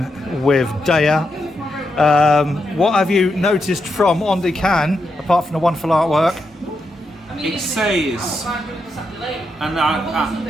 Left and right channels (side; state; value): both; normal; correlation 0.84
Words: with Daya. What have you noticed from on the can, apart from the wonderful artwork? It says, and